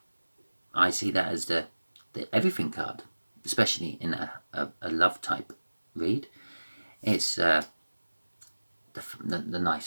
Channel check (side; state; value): both; inverted; correlation -1.00